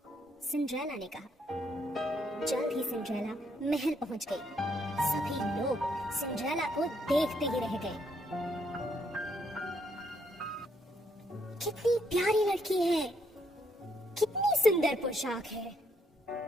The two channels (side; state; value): both; normal; correlation 0.73